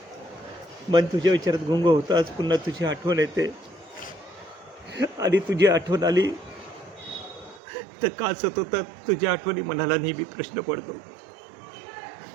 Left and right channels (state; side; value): drops out; left; at 7.6 s